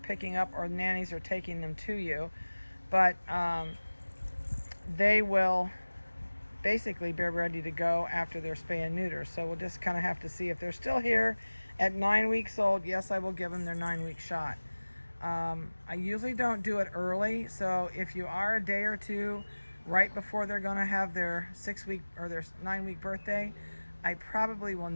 up or nannies are taking them to you. But they will basically be ready to go after their spay and neuter. So we'll just kind of have to see if they're still here at 9 weeks old. Yes, I will give them their 9-week shot. I usually don't do it early, so if you are a day or two right before they're going to have their 6-week or their 9-week birthday, I probably will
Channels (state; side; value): inverted; both; correlation -1.00